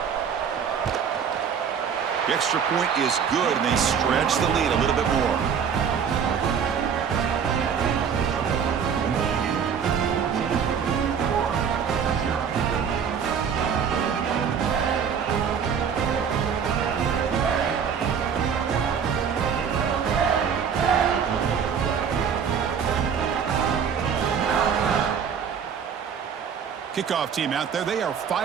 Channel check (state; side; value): quieter; left; 7.2 dB